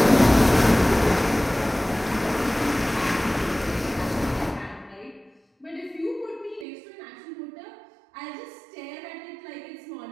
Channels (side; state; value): left; drops out; at 6.7 s